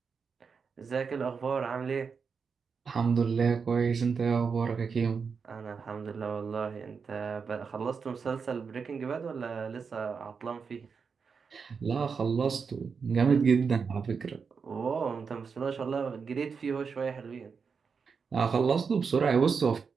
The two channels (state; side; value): quieter; left; 5.7 dB